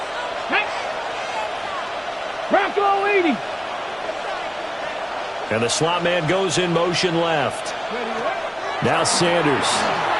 Bronco 80. And the slot man goes in motion left. Now Sanders.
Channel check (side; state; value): both; identical; correlation 1.00